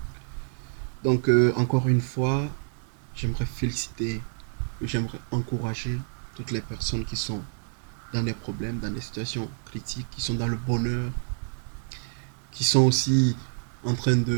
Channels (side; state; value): left; silent; digital silence